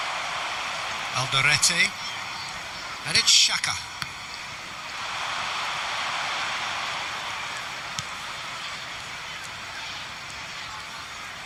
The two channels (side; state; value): both; identical; correlation 1.00